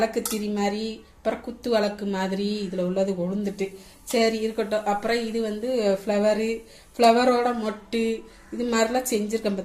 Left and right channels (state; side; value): identical; both; correlation 1.00